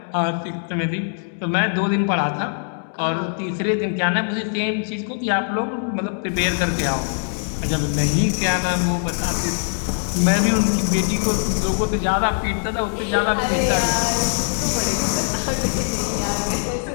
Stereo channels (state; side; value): silent; right; digital silence